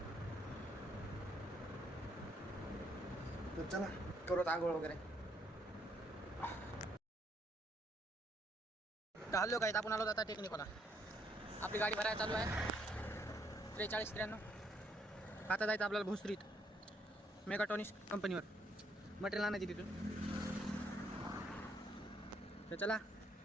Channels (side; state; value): both; normal; correlation 0.71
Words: तर चला करू आंघोळ वगैरे. तर हल्लो काय, आपण आलो आता टेक्निकला. आपली गाडी भरायला चालू आहे 43-93. आता जायचं आपल्याला भोसरीत मेगाट्रॉनिक्स कंपनीवर मटेरियल आणायची तिथून. तर चला